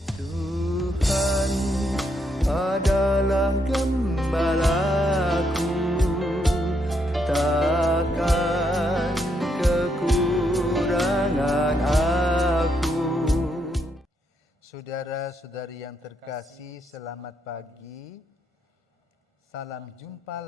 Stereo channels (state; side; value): normal; both; correlation 0.77